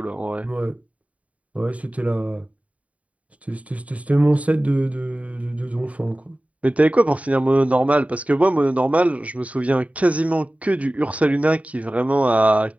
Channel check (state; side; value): late; left; 0.067 ms